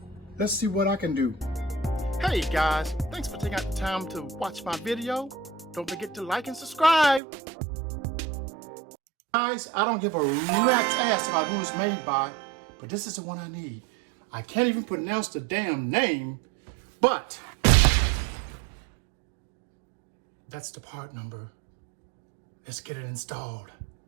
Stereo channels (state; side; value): drops out; left; at 7.2 s